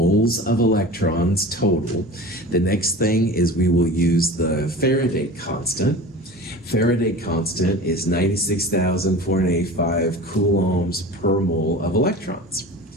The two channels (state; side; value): normal; both; correlation 0.35